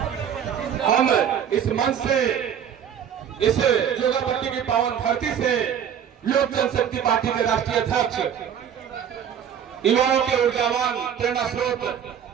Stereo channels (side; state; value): left; quieter; 8.7 dB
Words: हम इस मंच से, इस जोगापट्टी की पावन धरती से लोक जनशक्ति पार्टी के राष्ट्रीय अध्यक्ष, युवाओं के ऊर्जावान प्रेरणा स्रोत